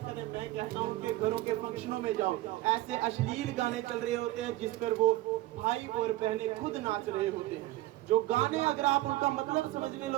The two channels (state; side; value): quieter; left; 17.0 dB